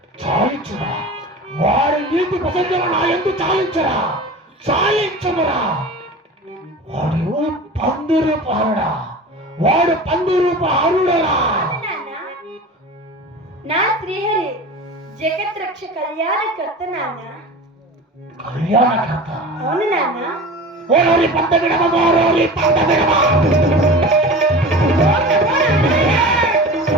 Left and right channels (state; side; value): normal; both; correlation 0.34